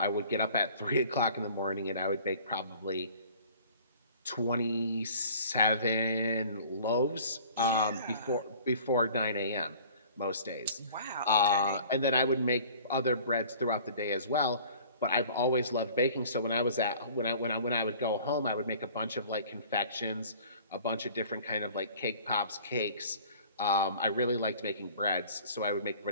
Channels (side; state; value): both; inverted; correlation -0.49